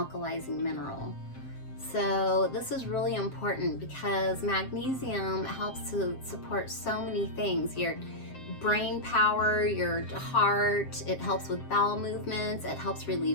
mineral. So this is really important because magnesium helps to support so many things. Your brain power, your heart, it helps with bowel movements, it helps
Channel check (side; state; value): right; late; 7.6 ms